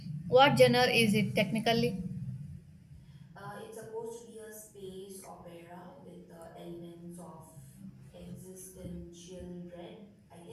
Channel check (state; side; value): identical; both; correlation 1.00